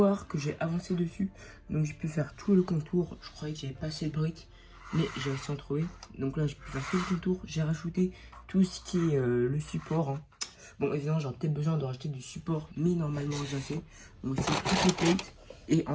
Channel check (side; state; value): both; identical; correlation 1.00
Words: que j'ai avancé dessus. Donc j'ai pu faire tout le contour. Je croyais que j'avais pas assez de briques, mais j'ai réussi à en trouver. Donc là, j'ai pu faire tout le contour. J'ai rajouté tout ce qui est le support, hein. Bon, évidemment, j'aurais peut-être besoin de rajouter du support, mais normalement, j'ai assez. Donc aussi toutes les plates. Et